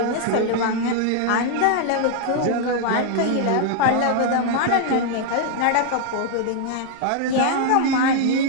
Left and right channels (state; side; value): different; both; correlation 0.00